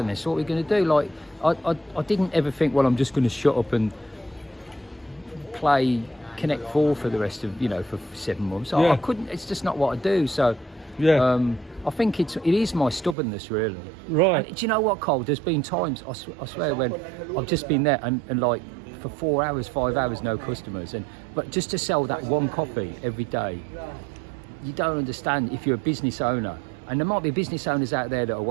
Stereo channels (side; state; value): left; drops out; at 13.2 s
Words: this. What are we going to do? Like, I didn't ever think, well, I'm just going to shut up and play Connect 4 for the rest of, you know, for 7 months. I couldn't. It's just not what I do. So, I think it is my stubbornness, really. Right. And do you know what, Karl? There's been times, I swear, when I've just been there and like for 4 hours, 5 hours, no customers, but just to sell that one coffee every day. You don't understand if you're a business owner, and there might be business owners out there that are